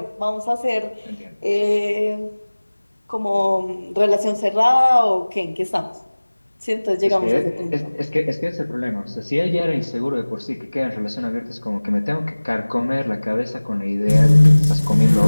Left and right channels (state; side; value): inverted; both; correlation -1.00